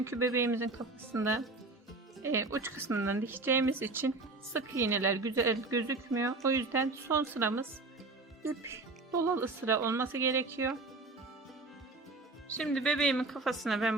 bebeğimizin kafasında uç kısmından dikeceğimiz için sık iğneler güzel gözükmüyor. O yüzden son sıramız ip dolalı sıra olması gerekiyor. Şimdi bebeğimin kafasına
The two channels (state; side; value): quieter; left; 3.4 dB